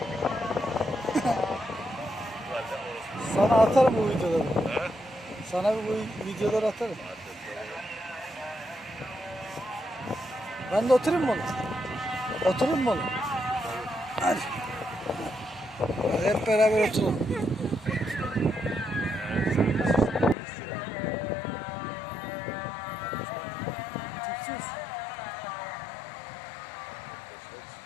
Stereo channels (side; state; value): right; drops out; at 20.4 s